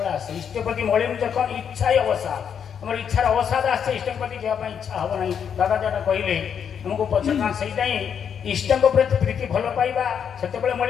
আসে। ইষ্টপ্রীতি মলিন যখন ইচ্ছাই অবসাদ, আমার ইচ্ছার অবসাদ আসছে, ইষ্টଙ୍କ প্রতি যাওয়া ইচ্ছা হব না। দাদা যেটা কহিলে আমাকে পছন্দ, সেইটাই ইষ্টଙ୍କ প্রতি প্রীতি ভাল পাইবা সেতবে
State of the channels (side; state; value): right; quieter; 7.7 dB